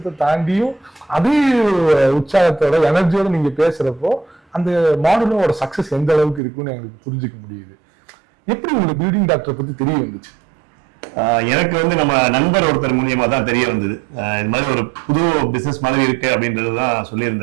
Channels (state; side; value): drops out; left; at 6.4 s